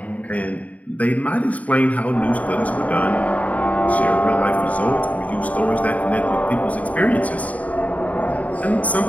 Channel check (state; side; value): late; right; 0.070 ms